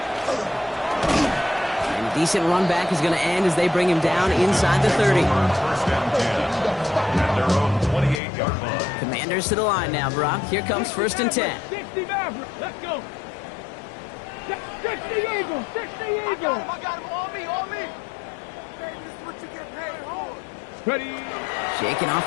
a decent run back is going to end as they bring him down inside the 30. First and 10 at their own 28-yard line. Commanders to the line now, Brock. Here comes 1st and 10. 60 Maverick. Let's go. 60 Eagles. 60 Eagles. I got him on me, on me. Hey, this is what you get paid for. Ready. Shaking off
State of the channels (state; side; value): drops out; right; at 8.2 s